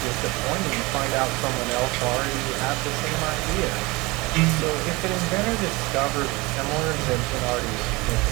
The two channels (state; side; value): quieter; left; 23.7 dB